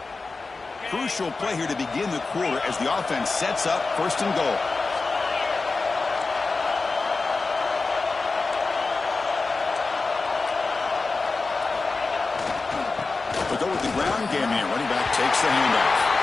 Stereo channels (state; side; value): quieter; right; 3.9 dB